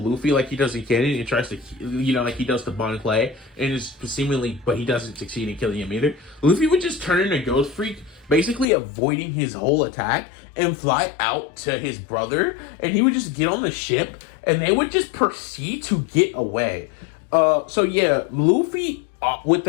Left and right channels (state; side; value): drops out; right; at 8.7 s